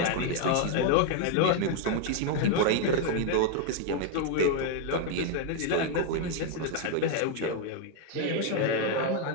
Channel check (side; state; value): both; different; correlation 0.00